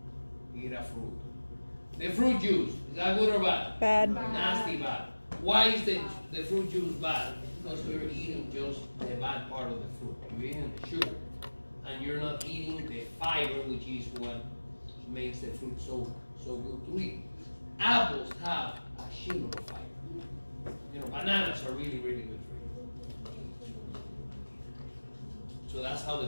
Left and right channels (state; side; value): inverted; both; correlation -1.00